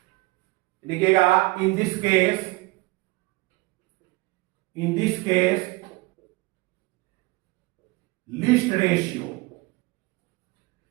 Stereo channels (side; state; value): left; quieter; 23.2 dB